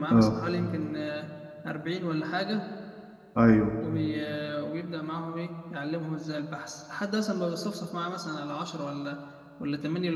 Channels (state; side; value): identical; both; correlation 1.00